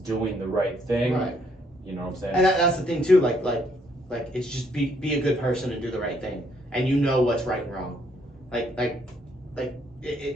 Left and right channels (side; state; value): both; normal; correlation 0.70